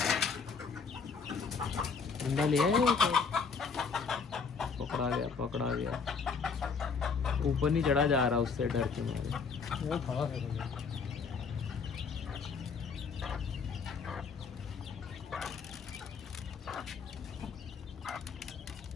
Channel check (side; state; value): right; quieter; 5.3 dB